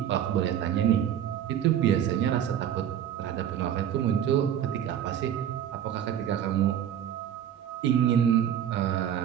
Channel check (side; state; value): left; quieter; 9.9 dB